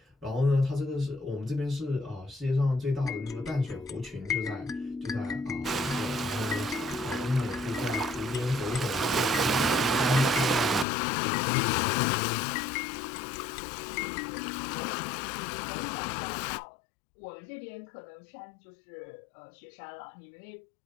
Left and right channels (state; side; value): drops out; right; at 10.9 s